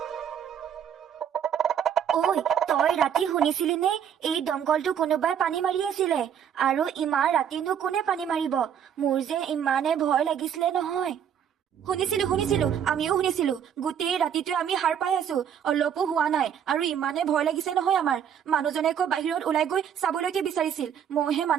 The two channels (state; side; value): quieter; left; 8.7 dB